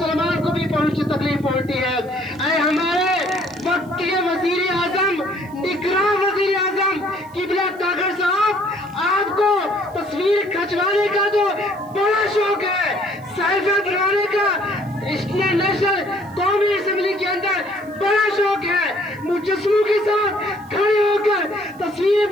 کو بھی تکلیف پہنچتی ہے۔ اے ہمارے وقت کے وزیر اعظم، نگراں وزیر اعظم قبلہ طاہر صاحب، آپ کو تصویر کھنچوانے کا تو بڑا شوق ہے، سیلفی بنانے کا نیشنل قومی اسمبلی کے اندر بڑا شوق ہے، مجسموں کے ساتھ کھڑے ہو کر تصویریں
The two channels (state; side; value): noise; right; hiss, 28 dB below the sound